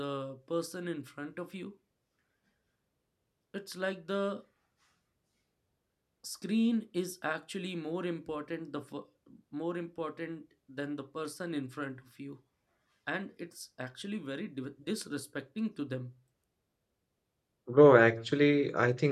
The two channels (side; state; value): both; identical; correlation 1.00